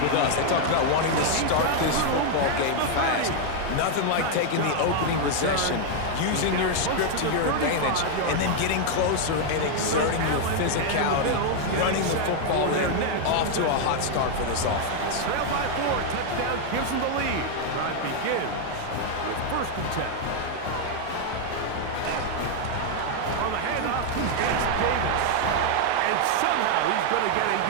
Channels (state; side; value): different; both; correlation 0.00